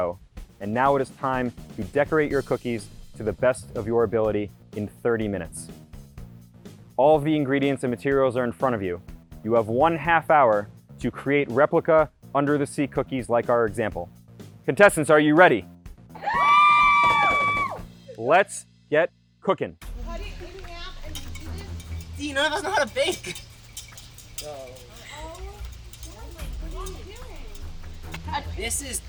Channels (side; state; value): both; identical; correlation 1.00